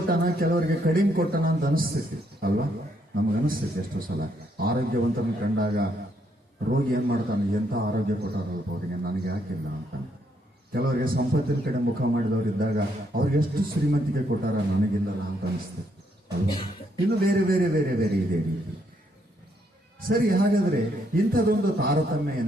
ಕೆಲವರಿಗೆ ಕಡಿಮೆ ಕೊಟ್ಟನ ಅಂತ ಅನಿಸ್ತೈತಿ ಅಲ್ವಾ? ನಮಗನಿಸ್ತೈತಿ ಎಷ್ಟೋ ಸಲ. ಆರೋಗ್ಯವಂತನ ಕಂಡಾಗ ರೋಗಿ ಏನ್ ಮಾಡ್ತಾನೆ, ಎಂಥ ಆರೋಗ್ಯ ಕೊಟ್ಟಾರಲ್ಪ ಅವರಿಗೆ, ನನಗೆ ಯಾಕಿಲ್ಲ ಅಂತ. ಕೆಲವರಿಗೆ ಸಂಪತ್ತಿನ ಕಡೆ ಮುಖ ಮಾಡಿದವರು ಇದ್ದಾಗ ಅವ್ರಿಗೆ ಎಷ್ಟು ಶ್ರೀಮಂತಿಕೆ ಕೊಟ್ಟಾರ, ನನಗಿಲ್ಲಲ್ಲ ಅಂತ ಅನಿಸ್ತದೆ ಅಲ್ವಾ? ಇನ್ನು ಬೇರೆ ಬೇರೆ ಬೇರೆ ಬೇರೆ ಇದೆ ರೀತಿ. ಸರಿ, ಹಾಗಾದ್ರೆ ಇಂಥದೊಂದು ತಾರತಮ್ಯ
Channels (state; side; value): normal; both; correlation 0.73